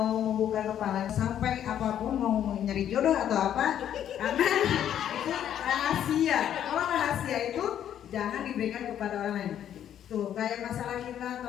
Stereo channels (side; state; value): right; quieter; 10.2 dB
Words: membuka kepala sampai apapun mau nyari jodoh atau apa, karena itu rahasia. Kalau rahasia itu jangan diberikan kepada orang lain. Tuh kayak masalah kita